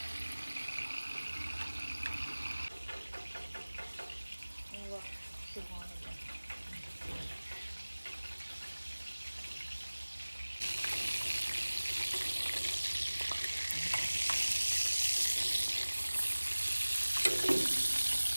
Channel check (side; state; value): both; inverted; correlation -1.00